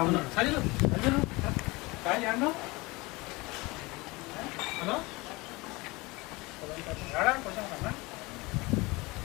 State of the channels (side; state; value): right; quieter; 23.5 dB